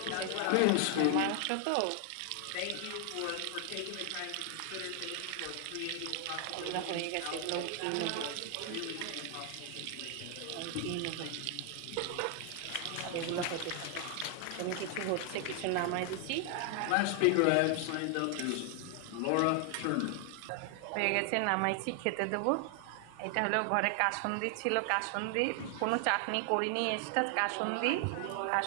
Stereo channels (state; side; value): different; both; correlation 0.00